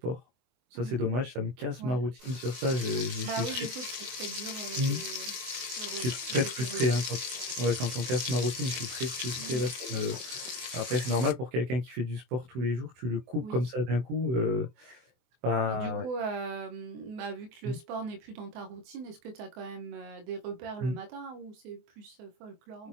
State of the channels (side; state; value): left; late; 23 ms